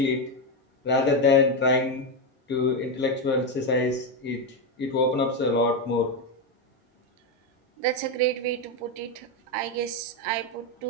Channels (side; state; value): both; normal; correlation 0.08